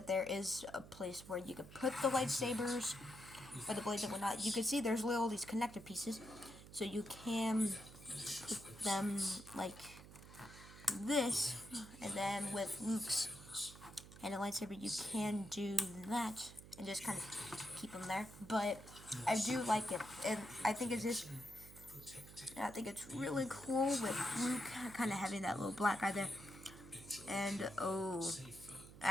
there is a place where you could put the lightsabers or the blades and whatnot. You can see there's all these connector pieces, so you can put them like this, and then with Luke's and a lightsaber you can do that and just kind of keep them there. But I do like it, and I think it's really cool with Luke kind of having that little black eye there. And oh,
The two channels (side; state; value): right; noise; hum, 17 dB below the sound